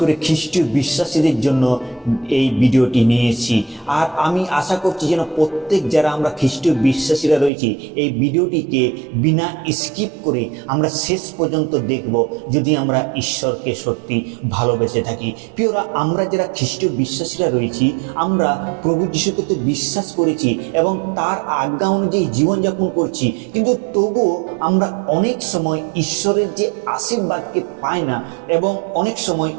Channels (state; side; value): drops out; left; at 7.5 s